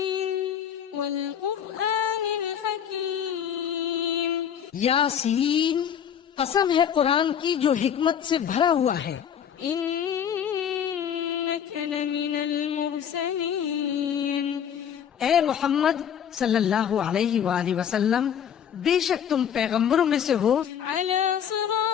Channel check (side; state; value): right; quieter; 8.7 dB